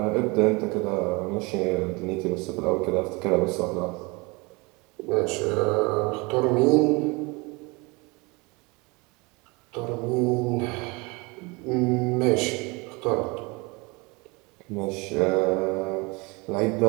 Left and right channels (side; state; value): left; quieter; 26.7 dB